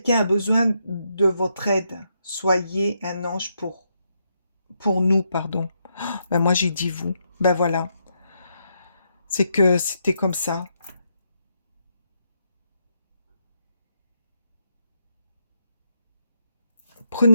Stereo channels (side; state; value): both; inverted; correlation -0.79